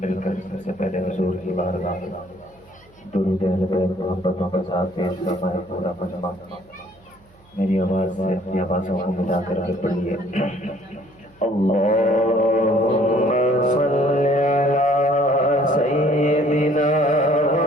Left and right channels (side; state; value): right; noise; hum, 29 dB below the sound